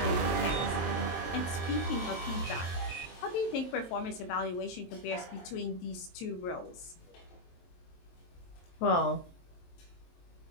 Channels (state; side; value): late; right; 23 ms